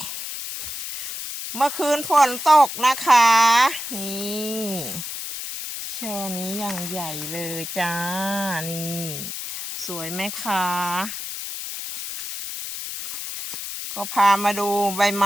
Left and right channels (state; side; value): noise; left; hiss, 6 dB below the sound